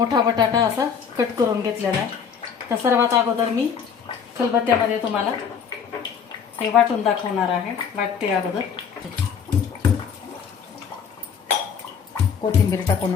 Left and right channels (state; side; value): quieter; right; 6.9 dB